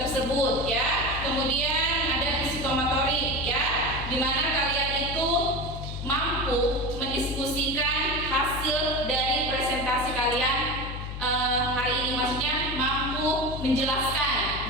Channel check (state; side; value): noise; left; hum, 7 dB below the sound